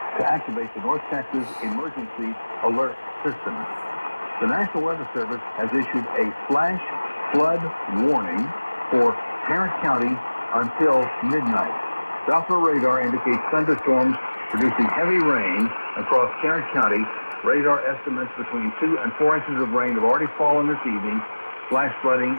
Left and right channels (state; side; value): inverted; both; correlation -1.00